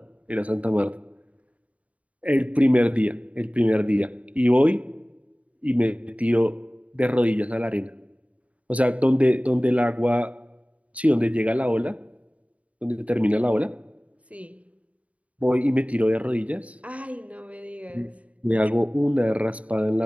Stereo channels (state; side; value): late; left; 0.067 ms